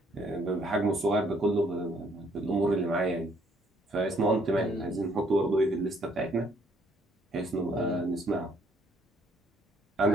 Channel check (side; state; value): both; normal; correlation 0.65